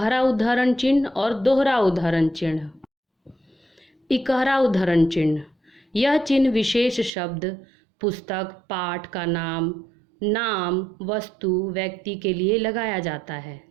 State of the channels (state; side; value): drops out; left; at 7.1 s